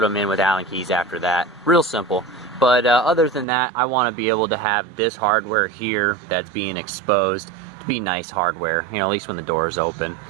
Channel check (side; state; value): left; drops out; at 3.5 s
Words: them in with Allen keys after that. Real simple. But other than that, I want to be able to have this hardware here that's being exposed to be nice hardware, you know, at least when the door is open.